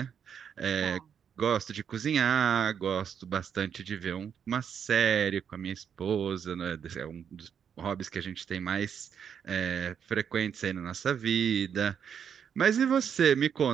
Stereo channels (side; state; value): left; quieter; 7.8 dB